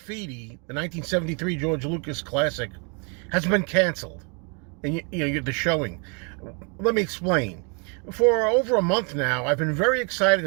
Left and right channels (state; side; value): quieter; left; 35.6 dB